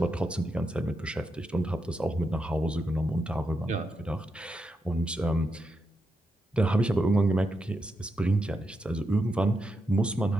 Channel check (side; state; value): both; normal; correlation 0.85